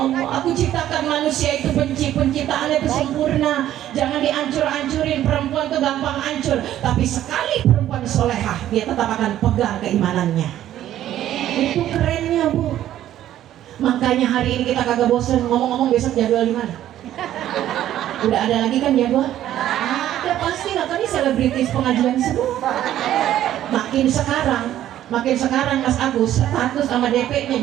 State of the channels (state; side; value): quieter; left; 12.3 dB